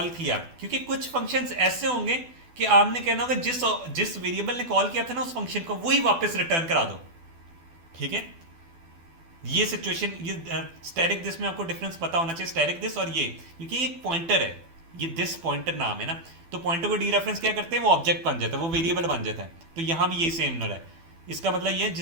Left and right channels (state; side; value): late; left; 12 ms